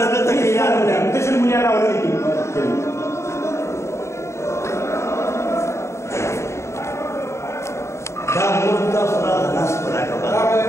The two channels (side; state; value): right; late; 0.14 ms